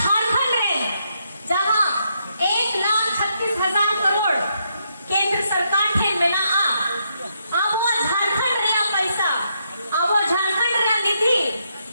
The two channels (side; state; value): both; inverted; correlation -0.78